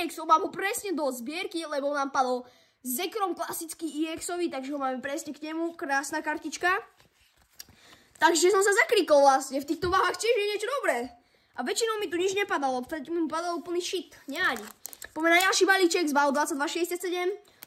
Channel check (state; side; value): identical; both; correlation 1.00